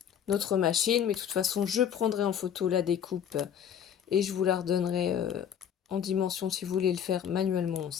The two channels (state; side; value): quieter; right; 8.7 dB